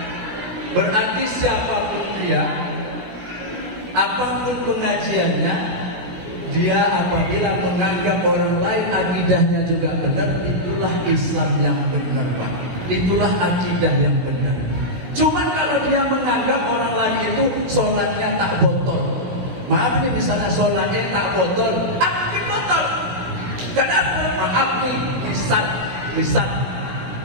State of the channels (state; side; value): late; left; 16 ms